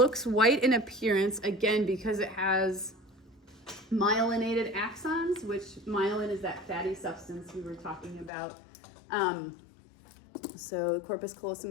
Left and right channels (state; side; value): drops out; right; at 8.3 s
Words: white in appearance, again, because it has myelinated axons, which myelin is that fatty substance we were talking about. So corpus